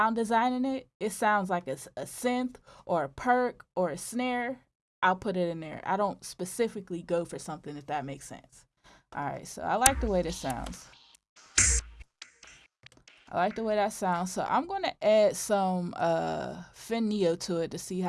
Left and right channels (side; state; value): both; identical; correlation 1.00